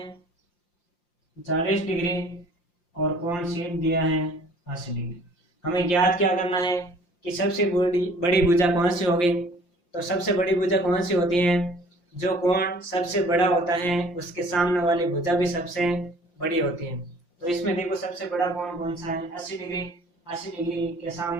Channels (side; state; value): right; late; 5.7 ms